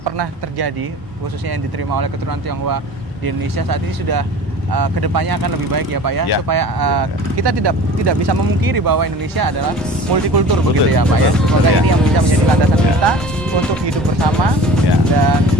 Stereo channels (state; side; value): normal; both; correlation 0.41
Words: pernah terjadi, khususnya yang diterima oleh keturunan Tionghoa di Indonesia saat ini sudah kedepannya akan lebih baik ya Pak ya, supaya kita tidak bisa memungkiri bahwa Indonesia adalah multikultur begitu ya Pak ya. Semoga ini yang bisa menjadi landasan kita untuk hidup bersama dan